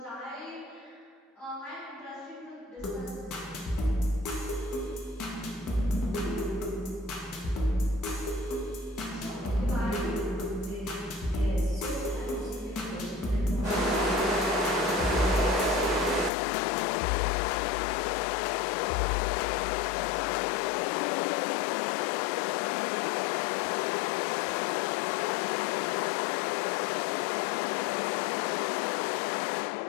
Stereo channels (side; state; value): right; drops out; at 16.3 s